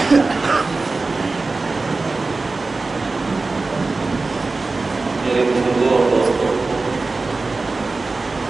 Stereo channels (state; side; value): quieter; left; 3.7 dB